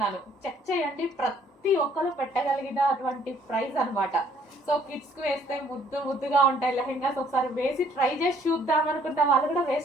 చెక్ చేయండి, ప్రతి ఒక్కరు పెట్టగలిగిన అటువంటి ప్రైస్ అనమాట. సో కిడ్స్కి వేస్తే ముద్దుగా ఉంటాయి లెహెంగాస్. ఒకసారి వేసి ట్రై చేసి చూద్దాం అనుకుంటే వాళ్ళు కూడా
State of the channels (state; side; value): normal; both; correlation 0.62